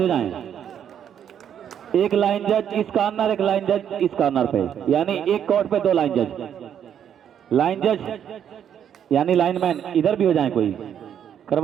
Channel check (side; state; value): left; quieter; 9.1 dB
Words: हो जाएं, एक लाइन जज इस कॉर्नर, एक लाइन जज इस कॉर्नर पे, यानी एक कोर्ट पे 2 लाइन जज। लाइन जज यानी लाइनमैन इधर भी हो जाए, कोई